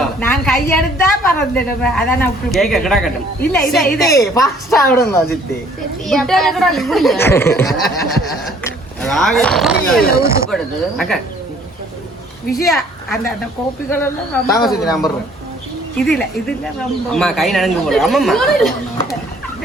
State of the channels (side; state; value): both; normal; correlation 0.58